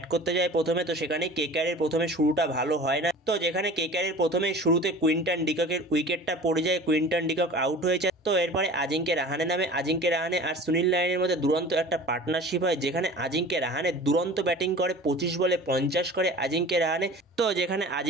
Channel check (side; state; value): both; normal; correlation 0.41